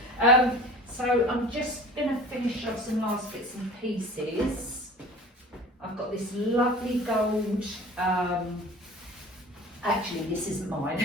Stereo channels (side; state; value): both; normal; correlation 0.40